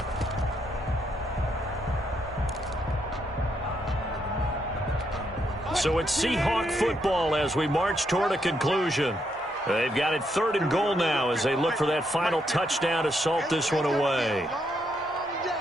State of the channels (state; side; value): normal; both; correlation 0.77